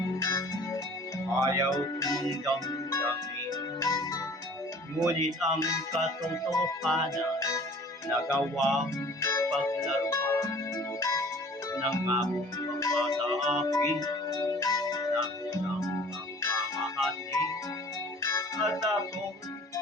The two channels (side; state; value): both; normal; correlation 0.49